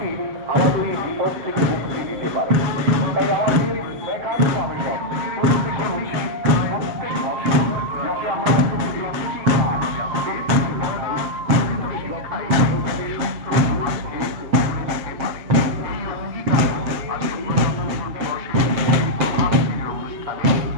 আমাদের এই বিপদ থেকে মুক্তি দিতে পারে। তাই আমাদের একান্ত আবেদন প্রত্যেকের উচিত প্রত্যেক বছর যাতে আমরা একটি কাজ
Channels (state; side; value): late; left; 7.3 ms